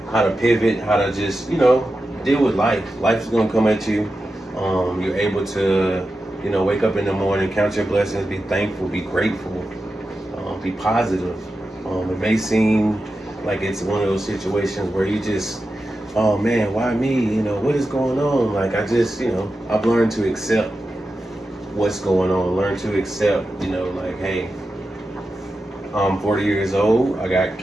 to pivot, how to just, you know, deal with life. Life's gonna come at you. You're able to, you know, wake up in the morning, count your blessings, be thankful, be grateful, be positive. It may seem like it's one of those situations where you just, oh man, why me? You know, what is going on? Like I just, you know, I've learned to accept what's going on. Learn to accept, you know, like, hey, I'm 40 years old. I got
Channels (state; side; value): normal; both; correlation 0.91